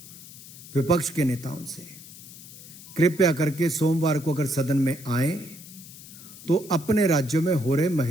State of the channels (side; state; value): left; noise; hiss, 17 dB below the sound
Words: विपक्ष के नेताओं से, कृपया करके सोमवार को अगर सदन में आए तो अपने राज्यों में हो रहे